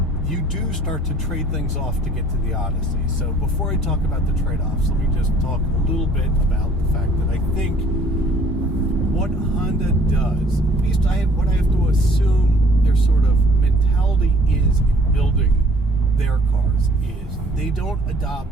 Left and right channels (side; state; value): both; normal; correlation 0.56